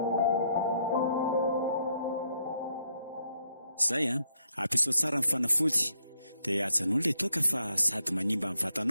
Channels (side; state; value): both; inverted; correlation -0.74